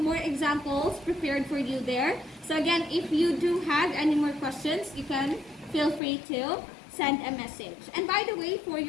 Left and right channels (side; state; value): right; drops out; at 6.0 s